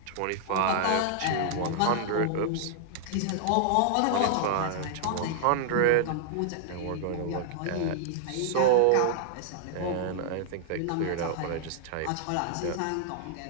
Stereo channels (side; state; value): both; different; correlation -0.01